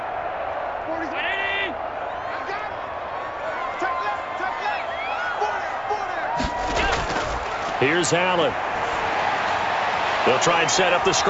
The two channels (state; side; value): identical; both; correlation 1.00